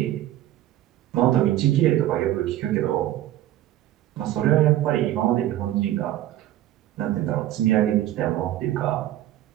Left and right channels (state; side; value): quieter; left; 13.7 dB